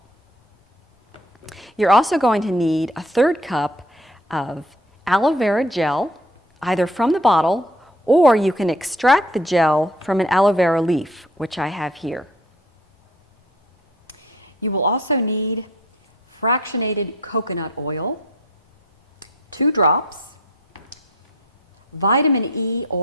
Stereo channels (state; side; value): normal; both; correlation 0.52